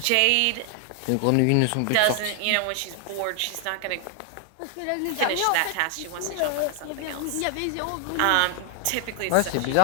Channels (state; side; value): different; both; correlation 0.00